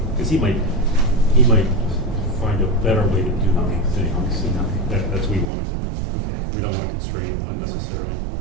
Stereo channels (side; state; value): left; drops out; at 5.5 s